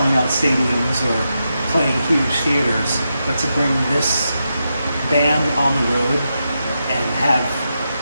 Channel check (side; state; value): both; inverted; correlation -0.86